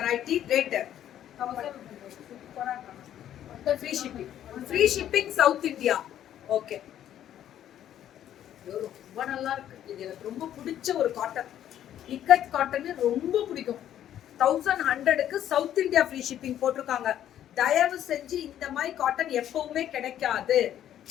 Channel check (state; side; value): quieter; right; 11.1 dB